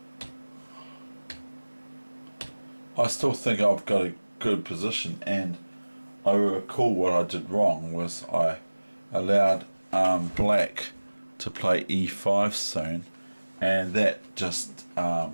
I still think I've got a good position, and I recall what I did wrong was I allowed black to play E5 soon, and that just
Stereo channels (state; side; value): inverted; both; correlation -1.00